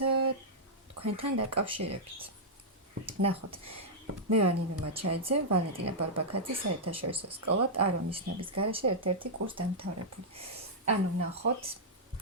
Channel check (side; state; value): both; normal; correlation -0.07